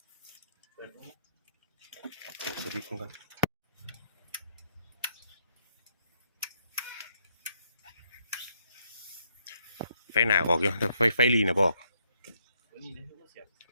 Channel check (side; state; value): both; inverted; correlation -0.74